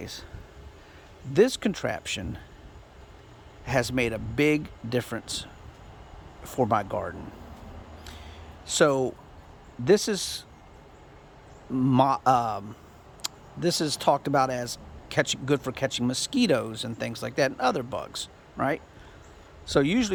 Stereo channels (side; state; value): both; identical; correlation 1.00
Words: this contraption has made a big difference for my garden. So this is talked about as good for catching mosquitoes and things like that, and other bugs, right? So